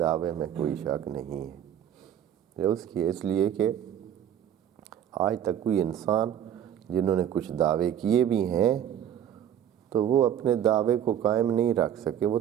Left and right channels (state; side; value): quieter; left; 10.0 dB